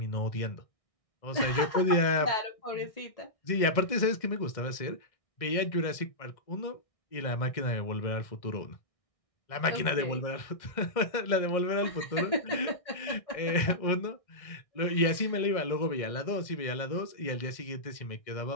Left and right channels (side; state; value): right; late; 1.6 ms